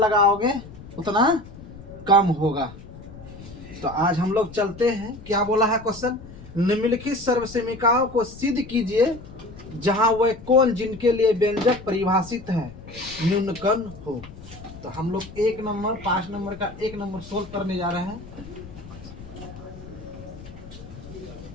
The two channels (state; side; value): noise; left; rumble, 16 dB below the sound